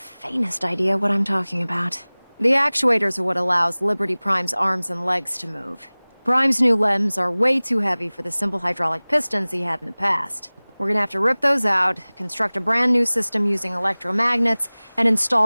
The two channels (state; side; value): inverted; both; correlation -1.00